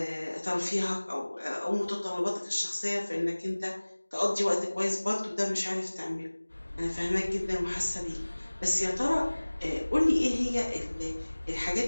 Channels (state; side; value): inverted; both; correlation -1.00